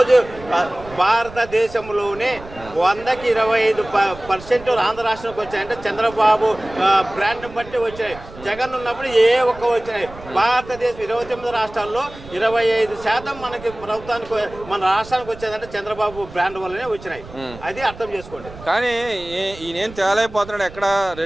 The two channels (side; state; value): right; noise; rumble, 17 dB below the sound